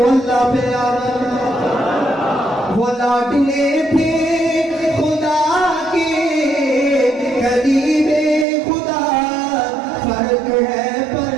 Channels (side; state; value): left; drops out; at 8.5 s